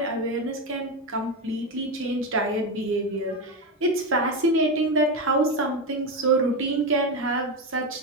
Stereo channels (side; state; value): both; normal; correlation 0.13